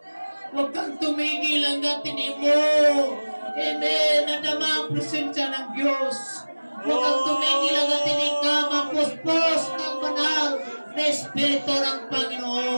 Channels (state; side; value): inverted; both; correlation -1.00